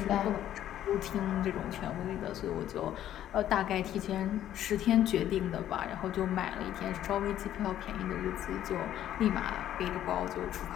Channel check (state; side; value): quieter; right; 11.7 dB